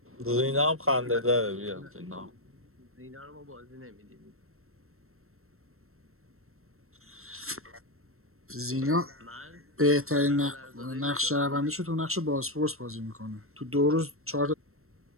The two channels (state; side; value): late; left; 0.62 ms